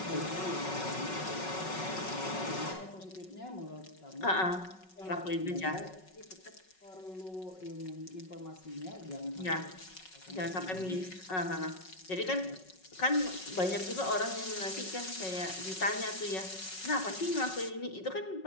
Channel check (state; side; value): late; right; 5.4 ms